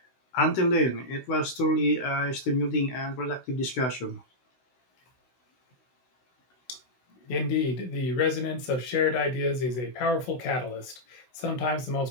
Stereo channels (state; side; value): late; right; 16 ms